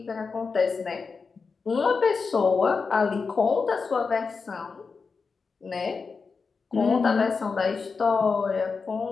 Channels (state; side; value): quieter; right; 4.9 dB